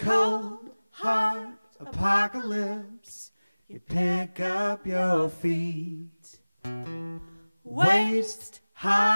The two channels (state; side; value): inverted; both; correlation -1.00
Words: hard apocalypse. You pick up your feet. Waist